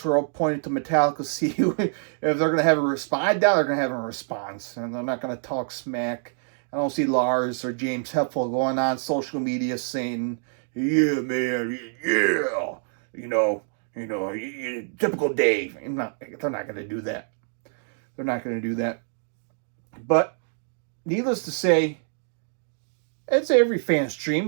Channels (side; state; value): left; silent; digital silence